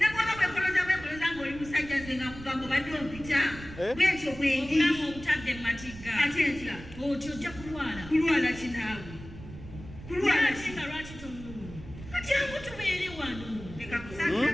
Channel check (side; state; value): right; noise; rumble, 14 dB below the sound